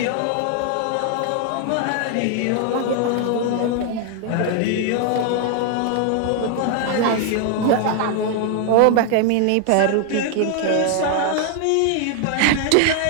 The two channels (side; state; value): both; different; correlation 0.00